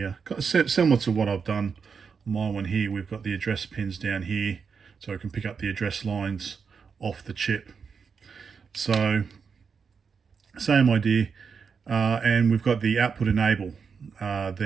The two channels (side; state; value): left; quieter; 5.9 dB